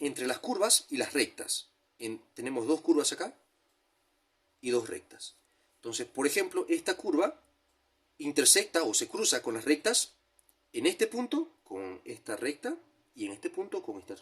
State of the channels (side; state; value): both; identical; correlation 1.00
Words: las curvas y las rectas. Tenemos dos curvas acá y dos rectas. Entonces, por ejemplo, esta curva intersecta o se cruza con las rectas en este punto con esta recta y en este punto con esta